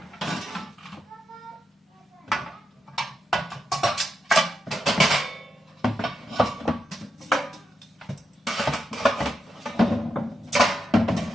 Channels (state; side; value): normal; both; correlation 0.85